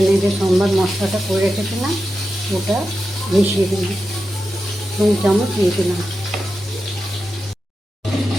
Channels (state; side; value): normal; both; correlation 0.90